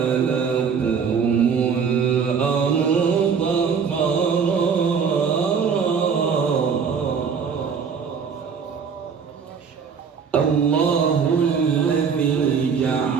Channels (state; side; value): quieter; left; 6.3 dB